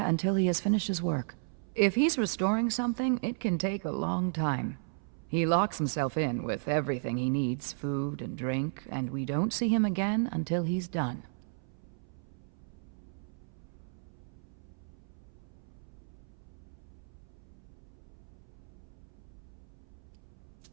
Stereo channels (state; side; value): silent; left; 55 dB below the other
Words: until he has finished his work. If he's restoring something, it can take a long time. He locks himself in with everything he needs, food and drink, and we don't see him again until he's done.